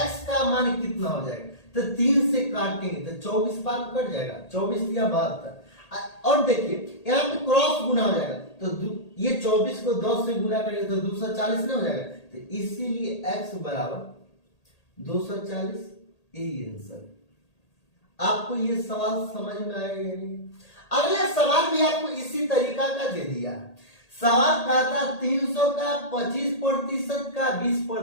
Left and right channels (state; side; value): late; right; 1.8 ms